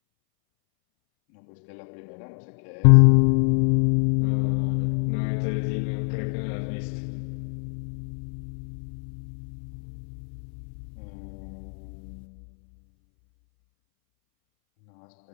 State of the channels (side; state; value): right; silent; 62 dB below the other